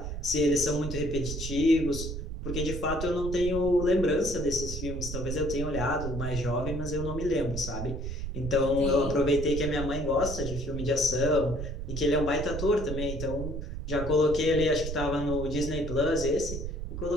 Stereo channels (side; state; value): right; noise; rumble, 5 dB below the sound